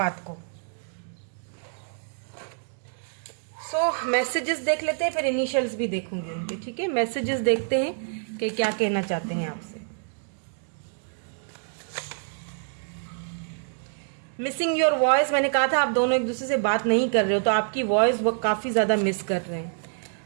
को। मैसेजेस देख लेते हैं, फिर इनिशियल्स भी देखूंगी उनके, ठीक है। मैसेजेस देखते हैं कि क्या कहना चाहते हैं आपसे। मिसिंग योर वॉइस, मैंने कहा था आप दोनों एक दूसरे से बात नहीं कर रहे हो, तो आपकी वॉइस वो काफ़ी ज़्यादा मिस कर रहे हैं।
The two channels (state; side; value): silent; left; digital silence